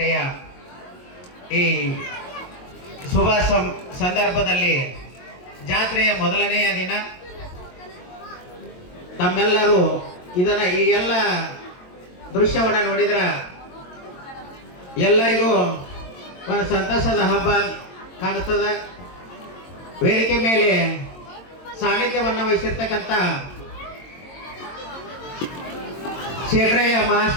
ಈ ಶುಭ ಸಂದರ್ಭದಲ್ಲಿ ಜಾತ್ರೆಯ ಮೊದಲನೆಯ ದಿನ ತಮ್ಮೆಲ್ಲರೂ ಇದನ್ನ ಈ ಎಲ್ಲ ದೃಶ್ಯವನ್ನು ನೋಡಿದ್ರೆ ಎಲ್ಲರಿಗೂ ಒಂದು ಸಂತಸದ ಹಬ್ಬ ಕಾಣಿಸ್ತದೆ. ವೇದಿಕೆ ಮೇಲೆ ಸಾನ್ನಿಧ್ಯವನ್ನು ವಹಿಸಿರ್ತಕ್ಕಂಥ ಶೇಖರಯ್ಯ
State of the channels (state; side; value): late; right; 22 ms